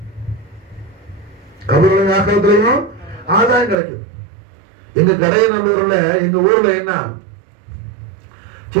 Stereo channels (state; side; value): drops out; left; at 3.8 s